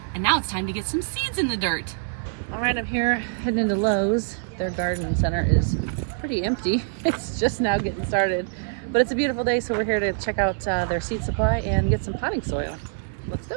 and now it's time to get some seeds in the dirt. All right, I'm here heading into Lowe's. Their garden center is pretty empty. It's just now getting started. But it's a beautiful day, so we're here to check out their seed supply and get some potting soil. Let's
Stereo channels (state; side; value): silent; left; digital silence